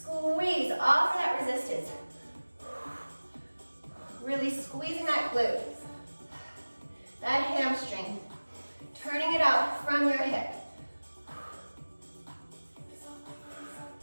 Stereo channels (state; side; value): inverted; both; correlation -1.00